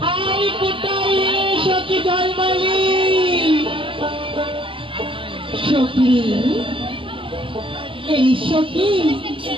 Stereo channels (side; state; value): left; late; 0.25 ms